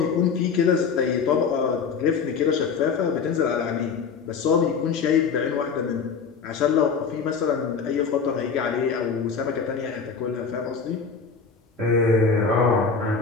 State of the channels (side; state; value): right; quieter; 5.6 dB